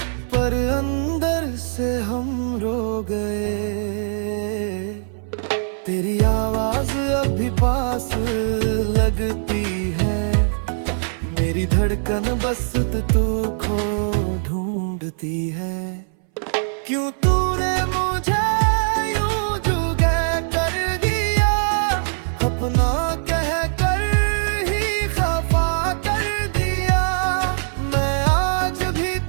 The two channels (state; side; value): silent; left; 61 dB below the other